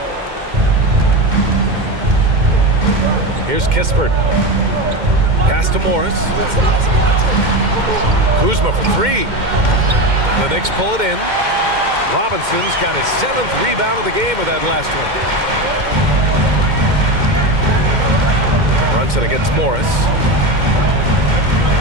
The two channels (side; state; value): left; late; 2.1 ms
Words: Here's Kispert. Pass to Morris. Kuzma for 3. The Knicks pull it in. Robinson's got his 7th rebound of the game with that last one. Brunson against Morris.